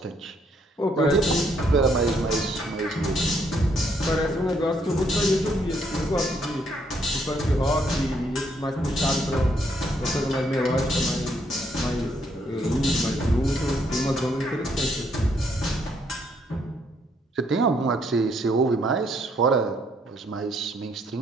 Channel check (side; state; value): both; normal; correlation 0.70